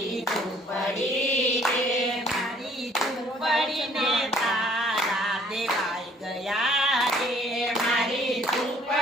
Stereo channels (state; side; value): normal; both; correlation 0.59